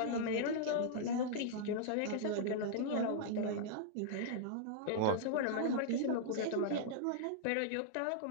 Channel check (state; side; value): different; both; correlation -0.01